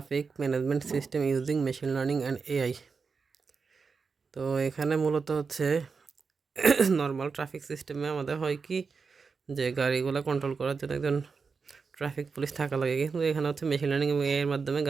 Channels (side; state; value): left; quieter; 5.1 dB